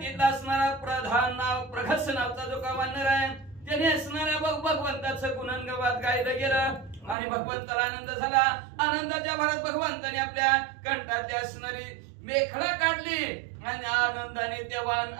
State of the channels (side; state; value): left; drops out; at 7.2 s